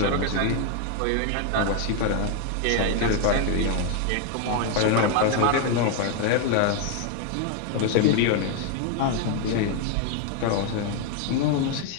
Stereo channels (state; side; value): different; both; correlation 0.01